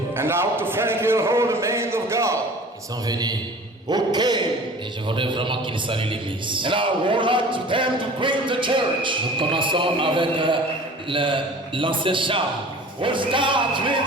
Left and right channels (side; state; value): both; normal; correlation 0.43